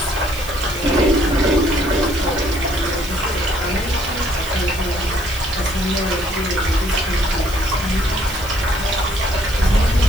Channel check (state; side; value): noise; left; hiss, 15 dB below the sound